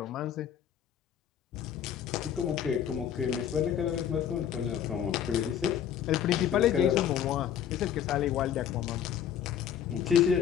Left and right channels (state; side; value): quieter; right; 9.2 dB